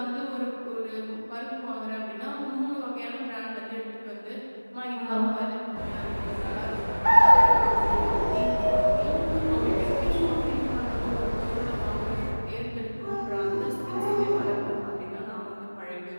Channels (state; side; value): inverted; both; correlation -1.00